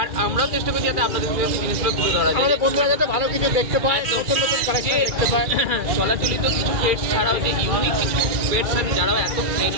আমরাও চেষ্টা করছি যাতে আপনাদের কাছে জিনিসগুলো তুলে ধরা যায়, আমাদের বন্ধুরা যাতে ভালো কিছু দেখতে পায়, নতুন নতুন কালেকশন দেখতে পায়। চলাচলিত কিছু পেটস ছাড়াও যে ইউনিক কিছু পেটস আছে যারাও এত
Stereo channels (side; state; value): left; late; 2.3 ms